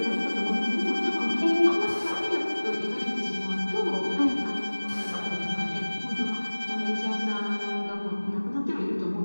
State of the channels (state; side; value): inverted; both; correlation -1.00